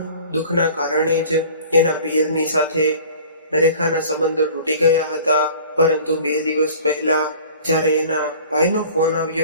દુઃખના કારણે જ એના પિયરની સાથે રેખાના સંબંધો તૂટી ગયા હતા। પરંતુ 2 દિવસ પહેલા જ્યારે એના ભાઈનો ફોન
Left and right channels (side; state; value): both; inverted; correlation -0.45